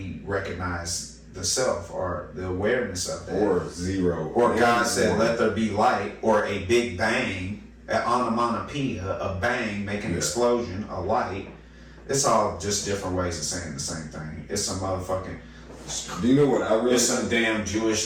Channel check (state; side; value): identical; both; correlation 1.00